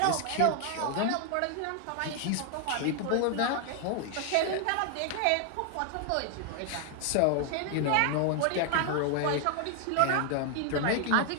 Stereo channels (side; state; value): both; different; correlation 0.00